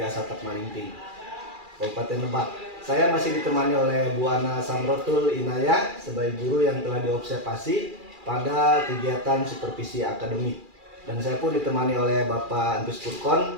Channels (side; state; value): left; late; 2.4 ms